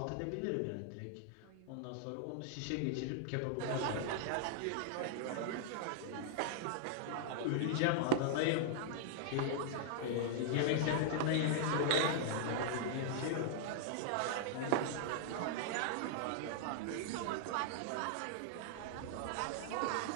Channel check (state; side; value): different; both; correlation -0.01